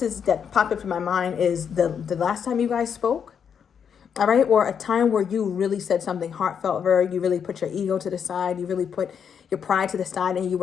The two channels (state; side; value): quieter; right; 7.4 dB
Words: popped up in my mind is the last time you guys spoke, all right? Or a time where you really said something heartfelt, you really put your ego to the side, you really put your pride to the side, and you